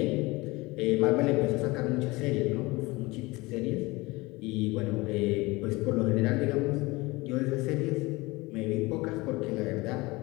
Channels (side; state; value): right; quieter; 22.6 dB